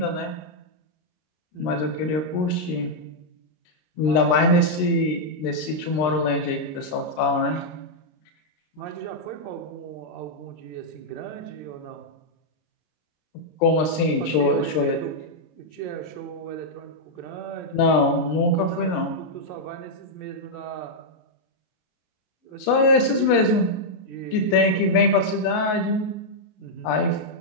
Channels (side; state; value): right; late; 33 ms